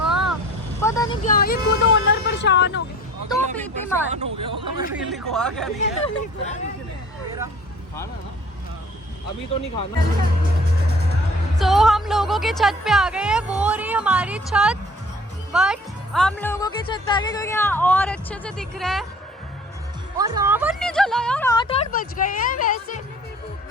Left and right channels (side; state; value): both; normal; correlation 0.49